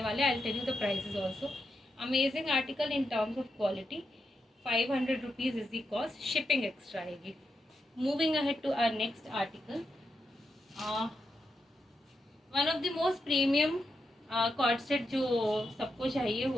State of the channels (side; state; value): both; normal; correlation 0.85